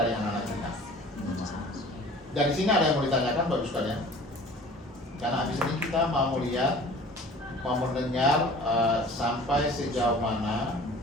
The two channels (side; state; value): both; normal; correlation 0.45